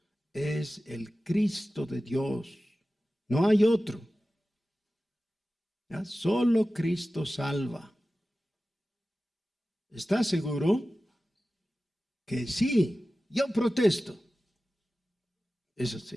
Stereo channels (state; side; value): normal; both; correlation 0.95